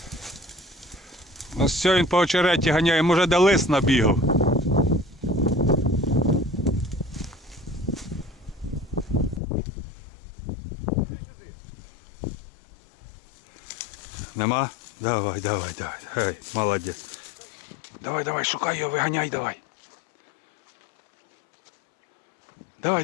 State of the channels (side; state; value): right; drops out; at 9.4 s